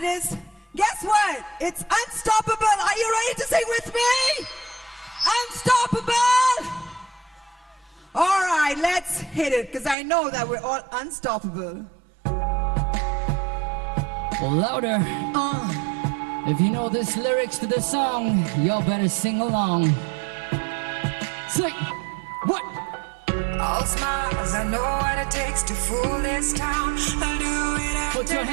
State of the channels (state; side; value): drops out; left; at 10.0 s